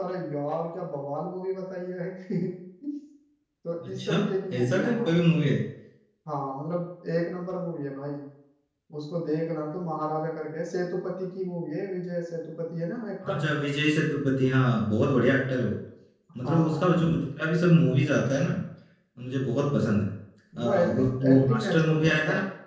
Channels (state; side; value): identical; both; correlation 1.00